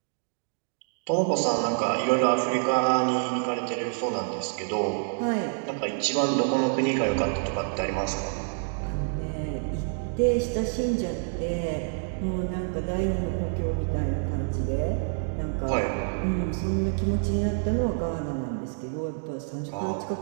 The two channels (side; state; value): left; silent; digital silence